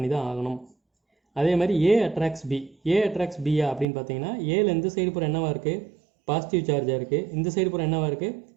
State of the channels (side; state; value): left; drops out; at 3.9 s